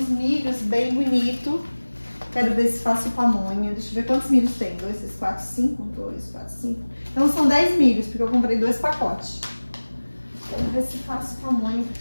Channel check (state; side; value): inverted; both; correlation -1.00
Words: milhos bem bonitos. Quero ver se faço pamonha. Deixa eu ver quantos milhos tem. 2, 3, 4, 5. 2, 4, 5. Então são 10 milhos, porque eu comprei 2 pacotes. Quero ver se faço pamonha,